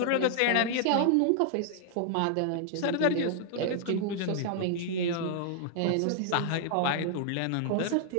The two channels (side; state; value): both; different; correlation -0.01